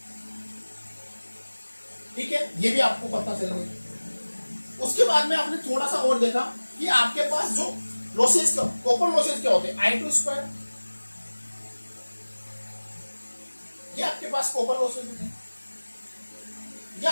ठीक है, ये भी आपको पता चल गया। उसके बाद में आपने थोड़ा सा और देखा कि आपके पास जो लॉसेज, कॉपर लॉसेज क्या होते हैं? I2 स्क्वायर, ये आपके पास कॉपर लॉसेज होते हैं, ये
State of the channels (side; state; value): both; inverted; correlation -1.00